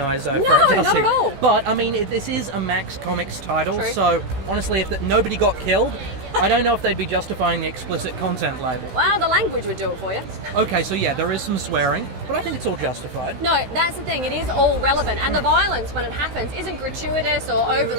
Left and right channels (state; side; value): late; left; 16 ms